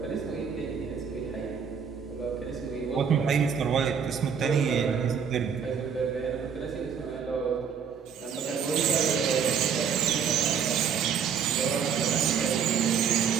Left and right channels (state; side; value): quieter; left; 7.0 dB